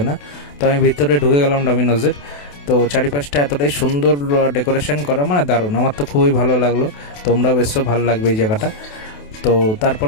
না। তো আমি ভিতরে ঢুকে গেলাম ডমিনোজের। তো চারিপাশটা এতটাই সুন্দর ডেকোরেশন করা, মানে দারুণ, আমার তো খুবই ভালো লাগলো। তোমরাও বেশ ভালো লাগবে এই জায়গাটা। তো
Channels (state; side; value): late; right; 28 ms